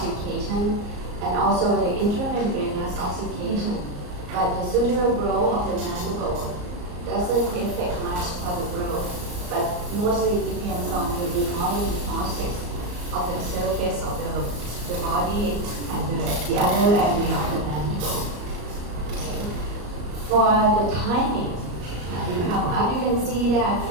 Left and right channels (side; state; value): left; late; 34 ms